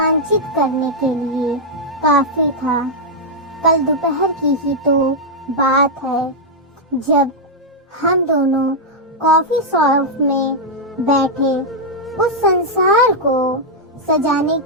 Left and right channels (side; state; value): both; normal; correlation -0.04